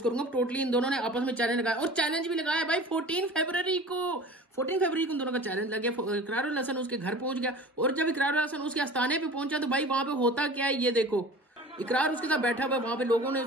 करूंगा टोटली। इन दोनों ने आपस में चैलेंज लगाया और चैलेंज भी लगाया भाई 14 फरवरी को उन दोनों का चैलेंज लग गया। इकरारुल हसन उसके घर पहुंच गया और जब इकरारुल हसन उसके आस्थाने पे पहुंचा तो भाई वहां पे होता क्या है ये देखो। इकरार उसके साथ बैठा हुआ, वहां पे लोगों ने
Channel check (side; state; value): both; normal; correlation 0.40